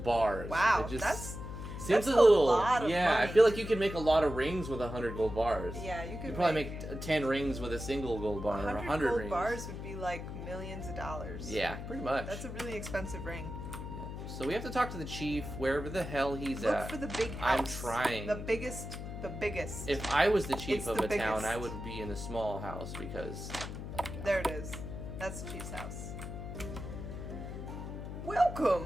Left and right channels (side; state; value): left; noise; hum, 8 dB below the sound